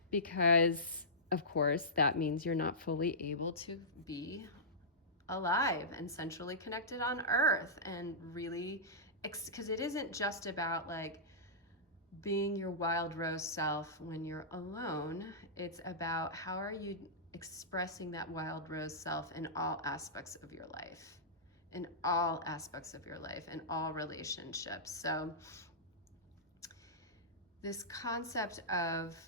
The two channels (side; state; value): both; normal; correlation -0.17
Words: Because of course that means you're not fully able to be alive and centrally connected on earth, and really, because it isn't just about like being your wild rose self when you're alone. It's about how are you expressing that wild rose self in all aspects of your life, in all aspects of your life, in all relationships. So this concept of